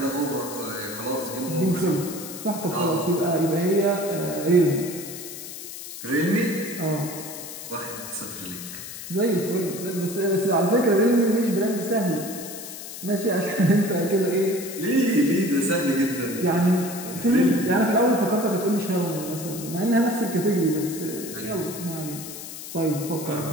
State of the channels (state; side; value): noise; left; hiss, 11 dB below the sound